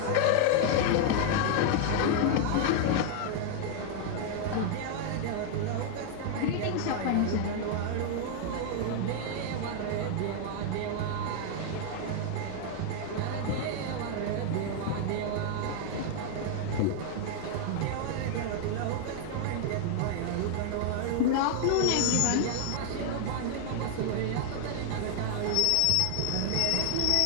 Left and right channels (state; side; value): different; both; correlation 0.00